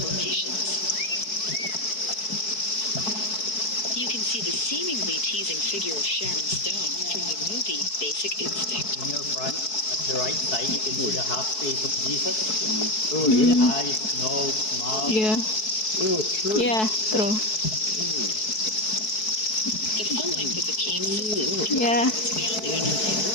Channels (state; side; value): late; right; 4.6 ms